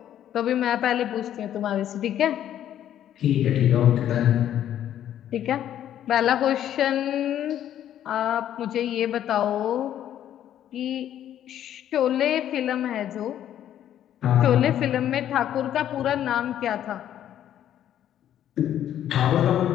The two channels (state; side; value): quieter; right; 11.0 dB